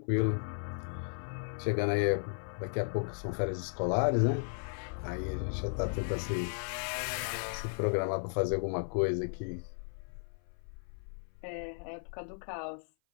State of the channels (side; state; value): right; silent; 54 dB below the other